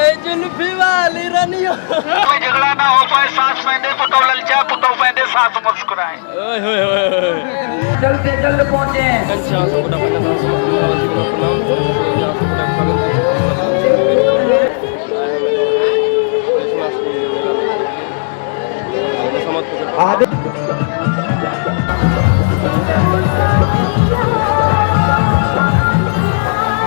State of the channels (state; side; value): silent; right; digital silence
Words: जुल्फी वाली रनियो कोई झगड़ा ना हो पाए, सांस पहने पुटो ललचा, पुटो पहने साथ मुस्कुराए। ओए होए होए कल के कल पहुंचे कंचा सबटा पहना था समस्त मुखावासी के प्रणाम। जहां सबटा स्वागत छै कमला मंच पे। आए हम लोग कृष्णाष्टमी मेला लेके मुसम्मत पकड़